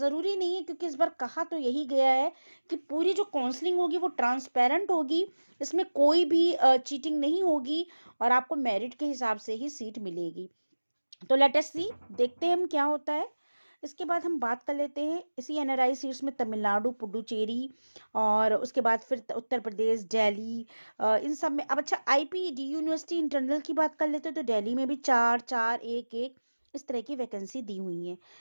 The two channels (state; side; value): inverted; both; correlation -1.00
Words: नहीं है, क्योंकि इस बार कहा तो यही गया है कि पूरी जो काउंसलिंग होगी वो ट्रांसपेरेंट होगी, इसमें कोई भी चीटिंग नहीं होगी और आपको मेरिट के हिसाब से ही सीट मिलेगी। तो लेट अस सी, देखते हैं हम क्या होता है। इसके बाद हम बात कर लेते हैं इसी एनआरआई सीट्स में तमिलनाडु, पुडुचेरी और उसके बाद फिर उत्तर प्रदेश, दिल्ली, इन सब में। अब अच्छा, आईपीडी यूनिवर्सिटी इंटरनल की बात कर लेते हैं। तो दिल्ली में भी 4, 4, 1, 1 इस तरह की वैकेंसी दी हुई है।